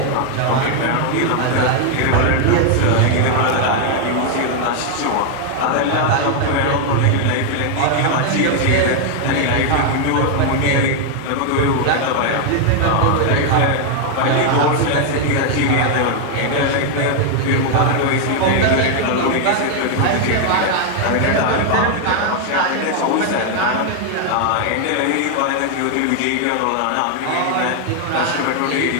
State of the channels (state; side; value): different; both; correlation 0.00